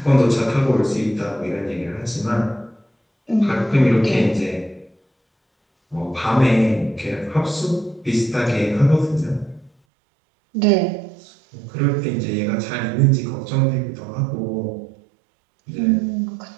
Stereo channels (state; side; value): drops out; left; at 9.7 s